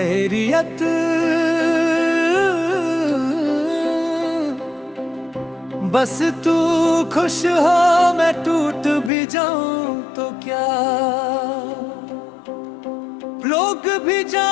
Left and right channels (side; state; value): right; drops out; at 9.1 s